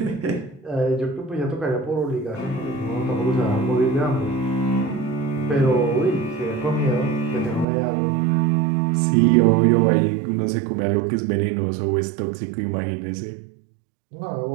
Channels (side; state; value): left; drops out; at 7.7 s